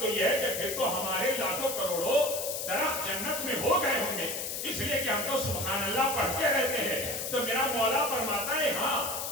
یہ ہے کہ پھر تو ہمارے لاکھوں کروڑوں درخت جنت میں ہو گئے ہوں گے اس لیے کہ ہم تو سبحان اللہ پڑھتے رہتے ہیں. تو میرا مولا فرماتا ہے ہاں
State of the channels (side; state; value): left; noise; hiss, 4 dB below the sound